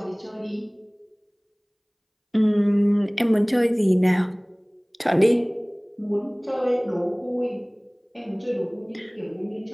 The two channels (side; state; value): both; identical; correlation 1.00